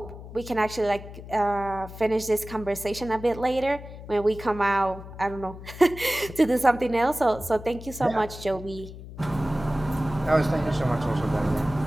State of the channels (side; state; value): left; noise; hum, 13 dB below the sound